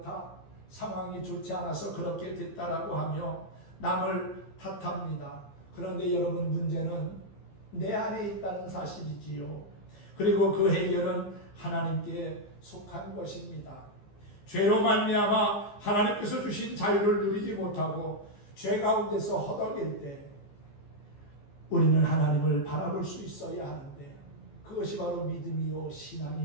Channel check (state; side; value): late; right; 15 ms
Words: 상황이 좋지 않아서 그렇게 됐다라고 하며 남을 탓합니다. 그런데 여러분, 문제는 내 안에 있다는 사실이지요. 그리고 그 해결은 하나님께 속한 것입니다. 죄로 말미암아 하나님께서 주신 자유를 누리지 못하고 죄 가운데서 허덕일 때 우리는 하나님을 바라볼 수 있어야 하는데 그것이 바로 믿음이요